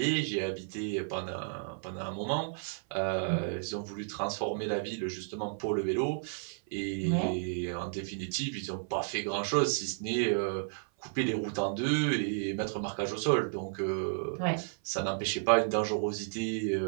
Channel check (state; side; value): silent; left; 56 dB below the other